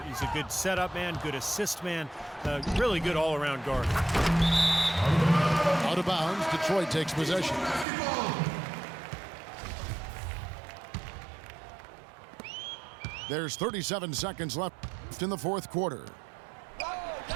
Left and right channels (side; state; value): left; drops out; at 7.9 s